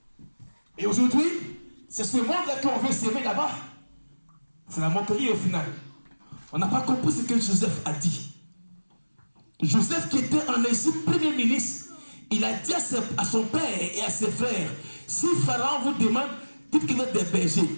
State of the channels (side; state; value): both; inverted; correlation -1.00